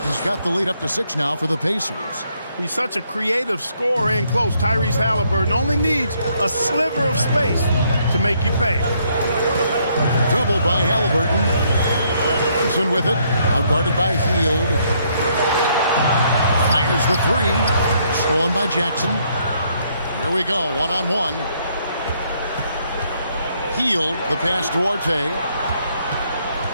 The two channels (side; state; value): both; inverted; correlation -0.71